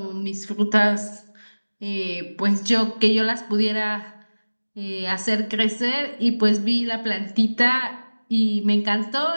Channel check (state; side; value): inverted; both; correlation -1.00